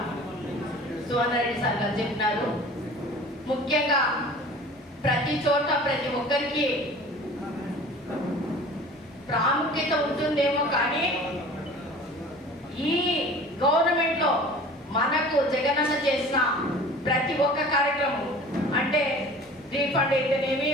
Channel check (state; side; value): normal; both; correlation 0.43